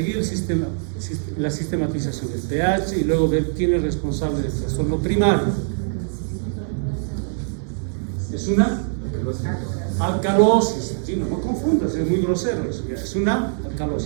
el sistema, la sistematización del pH y luego ver quién es responsable del trastorno primario. Es una alcalosis. Gino, no confundas, es muy grosero eso. Es una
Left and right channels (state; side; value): silent; left; digital silence